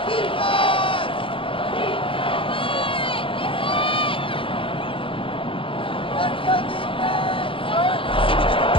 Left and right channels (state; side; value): late; right; 0.25 ms